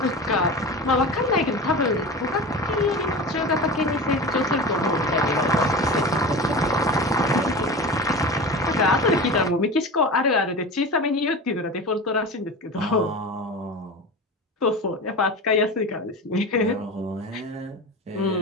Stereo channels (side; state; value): both; normal; correlation 0.30